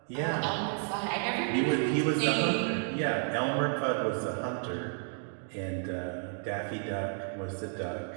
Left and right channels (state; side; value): silent; left; 57 dB below the other